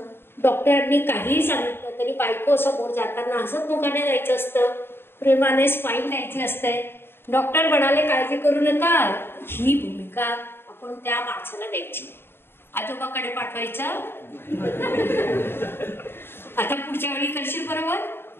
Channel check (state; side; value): late; right; 0.11 ms